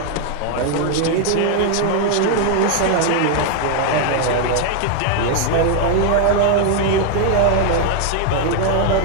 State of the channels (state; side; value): different; both; correlation 0.00